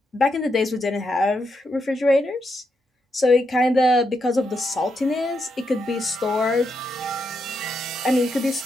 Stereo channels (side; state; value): both; normal; correlation 0.82